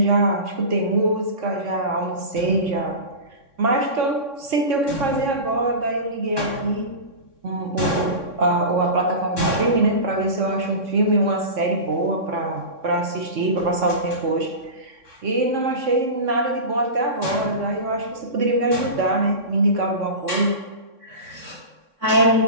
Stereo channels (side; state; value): left; late; 3.6 ms